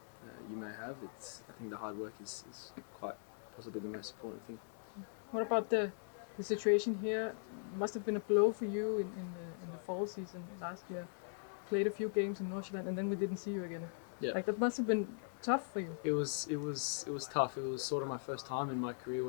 you may have, I think the hard work is quite possibly the most important thing. What about the situation here? Must have been a blow for you in the fall season last year. Played a few games in Nordsjælland and then we didn't see you again. Yeah. Like that must have been tough for you. It was tough. It was sort of my first time in my career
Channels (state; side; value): silent; right; digital silence